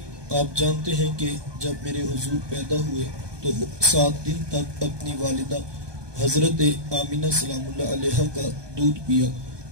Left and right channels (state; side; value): late; left; 1.2 ms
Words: آپ جانتے ہیں کہ جب میرے حضور پیدا ہوئے تو 7 دن تک اپنی والدہ حضرت آمینہ سلام اللہ علیہ کا دودھ پیا۔